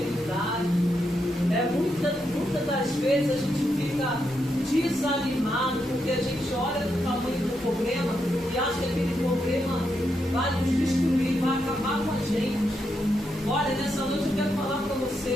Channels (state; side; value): normal; both; correlation 0.82